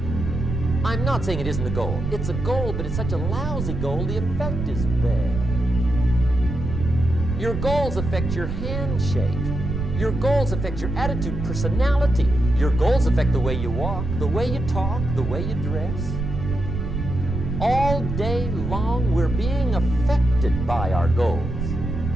I'm not saying it isn't a goal. It's a goal, but it's such a lousy goal, the effect is bad. Your goals affect your handshake. Your goals affect your attitude, personality. Your goals affect the way you walk, the way you talk, the way you dress. All day long, we're being affected by our goals.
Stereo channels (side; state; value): right; noise; rumble, 4 dB below the sound